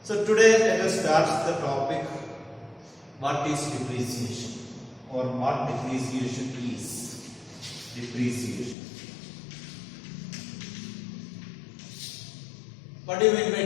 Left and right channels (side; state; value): right; drops out; at 8.8 s